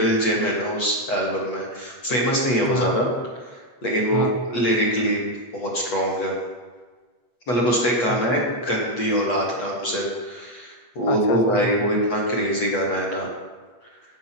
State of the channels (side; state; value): right; late; 8.3 ms